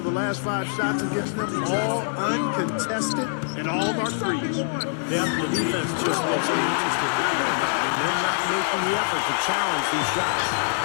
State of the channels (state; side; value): silent; right; digital silence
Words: the last 5 shots against them, all uncontested, and all are threes. Yeah, the defense just looks uninterested. They're not making the effort to challenge these shots.